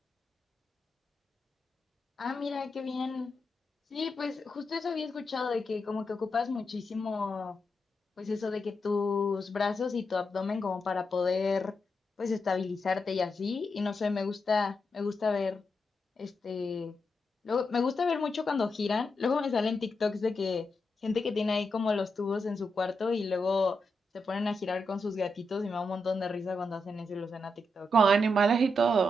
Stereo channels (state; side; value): normal; both; correlation 0.85